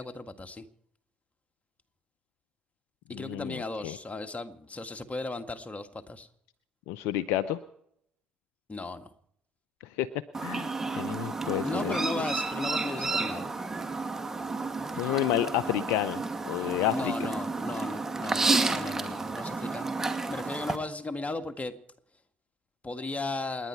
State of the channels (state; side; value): normal; both; correlation 0.58